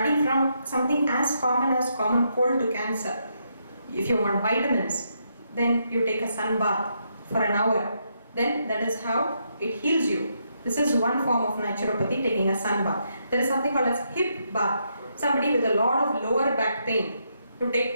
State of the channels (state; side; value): inverted; both; correlation -0.79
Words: from something as common cold to cancer. If you want vitamins, then you take a sun bath for an hour. Then that is how it heals you. This is one form of naturopathy, taking a sun bath. There is something called as hip bath. Somebody with a lot of lower back pain, to